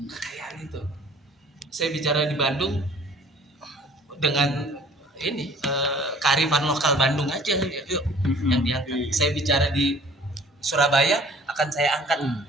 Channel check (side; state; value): both; normal; correlation 0.52